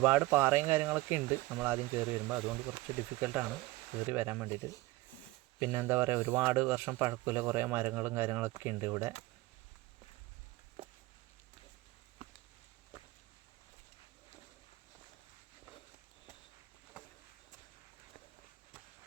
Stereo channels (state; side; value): quieter; left; 19.5 dB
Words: പാറയും കാര്യങ്ങളൊക്കെ ഉണ്ട് നമ്മൾ ആദ്യം കയറി വരുമ്പോൾ. അതുകൊണ്ട് കുറച്ച് ഡിഫിക്കൽട്ടാണ് കയറി വരാൻ വേണ്ടിയിട്ട്. പിന്നെ എന്താ പറയുക, ഒരുപാട് വർഷം പഴക്കമുള്ള കുറേ മരങ്ങളും കാര്യങ്ങളൊക്കെ ഉണ്ട് ഇവിടെ.